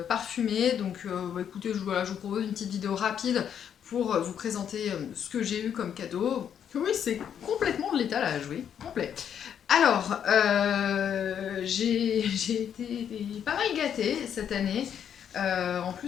parfumé. Donc écoutez, je vous propose une petite vidéo rapide pour vous présenter ce que j'ai eu comme cadeau. Oui, c'est complètement de l'étalage, oui, complet. Alors, j'ai été pas mal gâtée cette année. En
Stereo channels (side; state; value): right; quieter; 8.7 dB